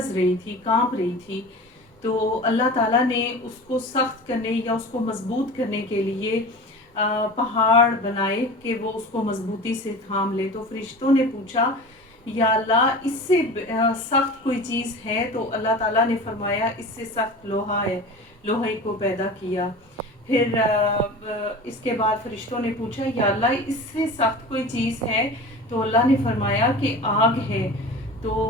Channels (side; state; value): both; normal; correlation 0.35